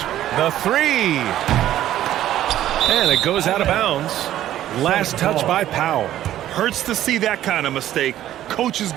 The 3. And it goes out of bounds. Last touch by Powell. Hurts to see that kind of mistake. Coach is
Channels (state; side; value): quieter; left; 12.6 dB